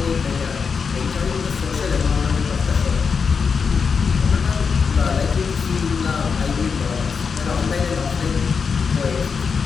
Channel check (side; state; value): right; quieter; 5.7 dB